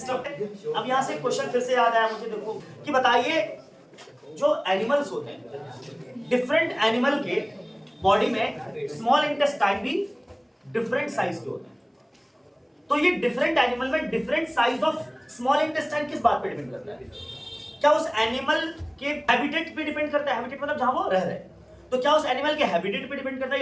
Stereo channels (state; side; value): identical; both; correlation 1.00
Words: अब यहां से क्वेश्चन फिर से याद आया मुझे, देखो कि बताइए जो एनिमल्स होते हैं, डिफरेंट एनिमल के बॉडी में स्मॉल इंटेस्टाइन भी डिफरेंट साइज के होते हैं, तो ये डिफरेंट एनिमल में different size of small intestine किस बात पे डिपेंड करता है? क्या उस एनिमल के हैबिटेट पे डिपेंड करता है? हैबिटेट मतलब जहां वो रह रहे हैं, तो क्या उस एनिमल के हैबिटेट पे डिपेंड करता है?